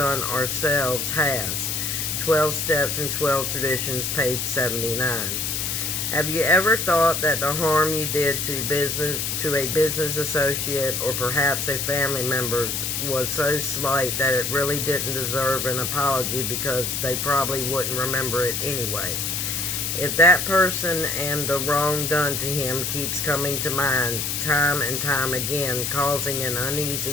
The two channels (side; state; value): left; noise; hiss, 1 dB below the sound